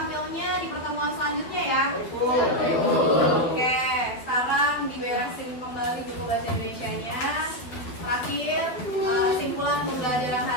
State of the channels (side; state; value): right; late; 12 ms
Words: di pertemuan selanjutnya ya. Oke, sekarang diberesin kembali buku bahasa Indonesianya. Terakhir, simpulan pembelajaran